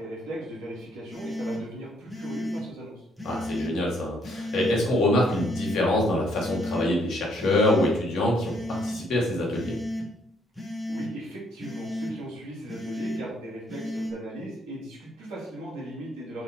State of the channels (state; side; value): normal; both; correlation 0.69